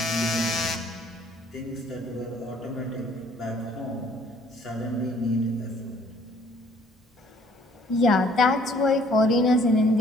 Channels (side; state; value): both; normal; correlation 0.60